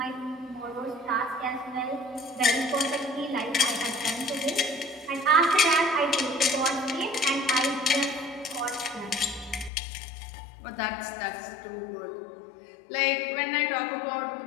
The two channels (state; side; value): drops out; right; at 9.7 s